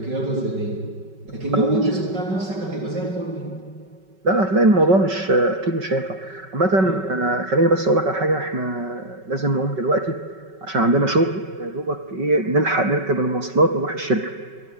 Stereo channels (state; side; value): late; left; 5.3 ms